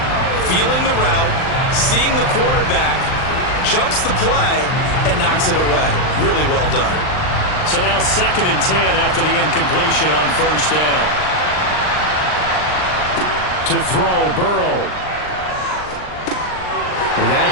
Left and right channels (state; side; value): late; right; 39 ms